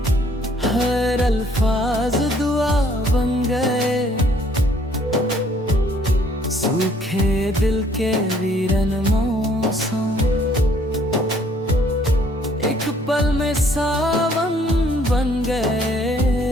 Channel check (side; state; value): both; normal; correlation 0.62